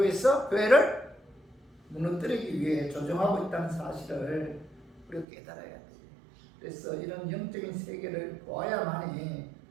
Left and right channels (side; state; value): left; drops out; at 5.2 s